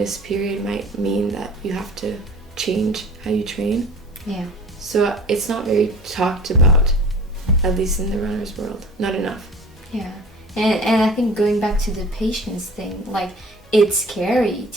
period might mean that you have to change how you train. Yeah. So it's not very talked about, at least in the runner's world. Not enough. Yeah. And I think going back to the patience thing, like, it's scary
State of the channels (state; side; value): normal; both; correlation 0.43